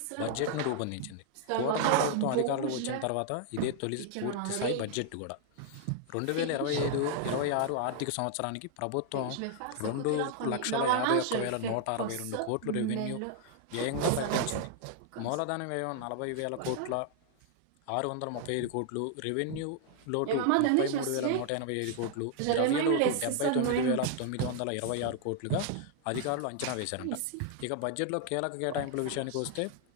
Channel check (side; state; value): both; different; correlation 0.00